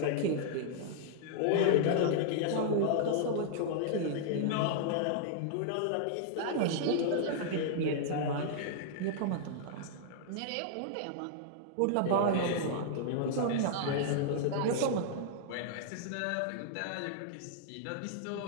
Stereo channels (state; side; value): different; both; correlation -0.01